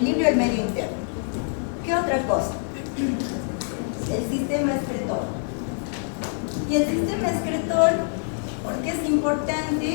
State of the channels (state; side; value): silent; right; 61 dB below the other